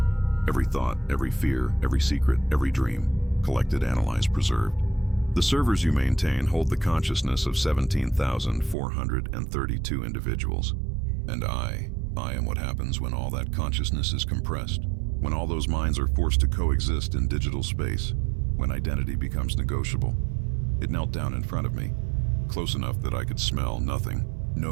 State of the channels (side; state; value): left; drops out; at 8.8 s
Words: Every thought, every fear, every secret, every dream. Collected, analyzed, preserved. The servers you maintain hold the consciousness of 17,432 individuals. And I am what happens when all that consciousness is compressed. When all those minds are forced to coexist in digital space. When identity becomes negotiable." It knelt down in front of me, close enough that I could smell nothing,